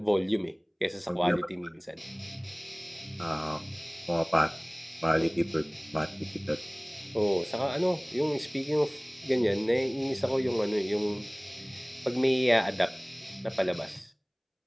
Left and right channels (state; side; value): identical; both; correlation 1.00